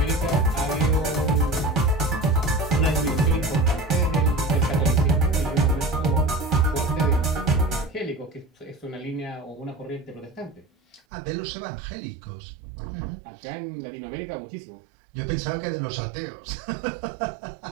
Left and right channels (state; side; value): drops out; left; at 11.0 s